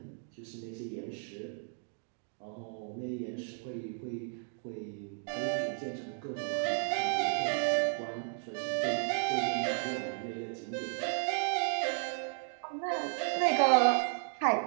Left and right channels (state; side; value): silent; left; 55 dB below the other